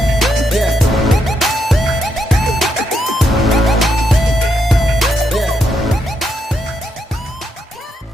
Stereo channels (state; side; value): normal; both; correlation 0.80